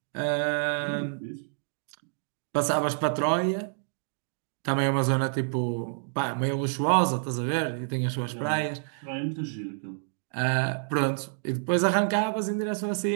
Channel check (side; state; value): left; silent; digital silence